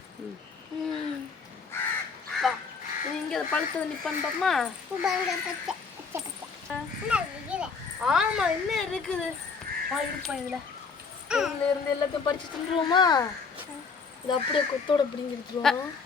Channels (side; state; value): right; quieter; 5.1 dB